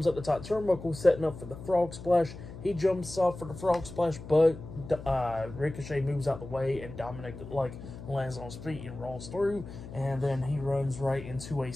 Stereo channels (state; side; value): noise; left; hum, 13 dB below the sound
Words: up the top turnbuckle, setting up for the frog splash. He jumps off for the frog splash, but Ricochet moves out the way, and Dominic lands on his feet and rolls through. And then he runs right into a